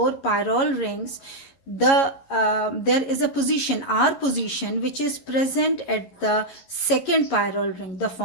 pyrrole rings. There is a position, R position, which is present at the second pyrrole ring. The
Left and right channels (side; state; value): right; late; 11 ms